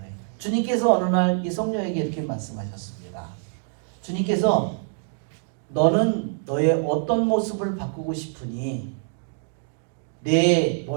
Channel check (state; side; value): silent; left; 62 dB below the other